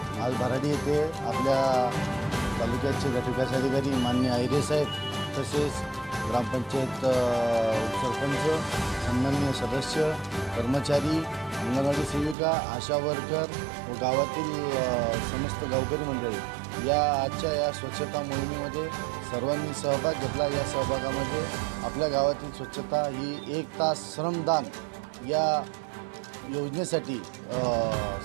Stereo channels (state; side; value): drops out; left; at 12.4 s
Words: आज भराडी येथे आपल्या तालुक्याचे गटविकास अधिकारी माननीय आहिरे साहेब तसेच ग्रामपंचायत उपसरपंच सन्माननीय सदस्य कर्मचारी अंगणवाडी सेविका आशा वर्कर व गावातील समस्त गावकरी मंडळी या आजच्या या स्वच्छता मोहिमेमध्ये सर्वांनी सहभाग घेतला। या सहभागामध्ये आपल्या गावातील स्वच्छता ही 1 तास श्रमदान या योजनेसाठी